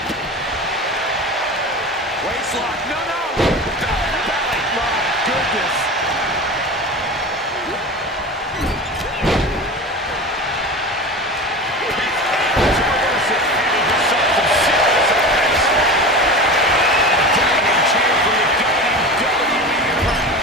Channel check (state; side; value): normal; both; correlation 0.30